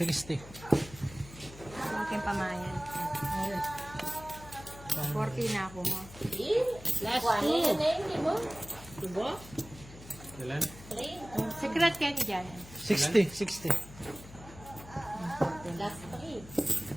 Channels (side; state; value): left; noise; hum, 17 dB below the sound